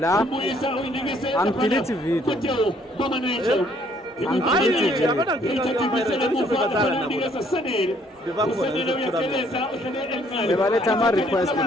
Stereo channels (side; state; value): both; normal; correlation 0.64